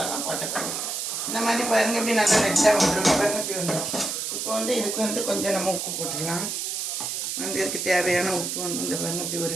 போட்டுக்கணும். இந்த மாதிரி பாருங்கள், இப்படி நல்லா ரெட்டாக வந்துடும். பாருங்கள், இப்படி வந்துடும். இப்போ இதுக்கு கொஞ்சம் நம்ம உப்பு போட்டுக்கலாம். இதுக்கு தேவையான உப்பு இந்த பாருங்கள், இப்படி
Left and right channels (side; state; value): right; noise; hiss, 3 dB below the sound